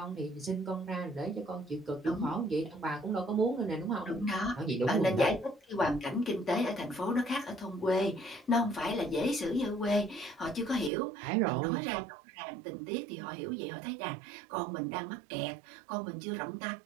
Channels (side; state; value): left; drops out; at 10.9 s